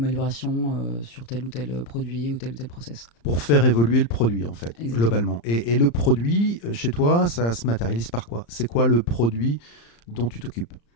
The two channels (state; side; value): late; right; 35 ms